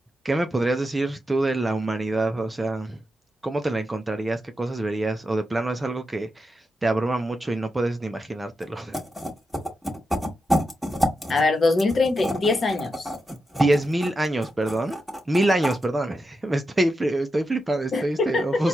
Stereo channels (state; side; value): normal; both; correlation 0.87